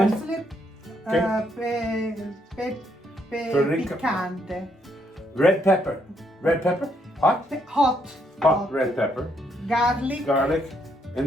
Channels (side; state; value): both; normal; correlation 0.73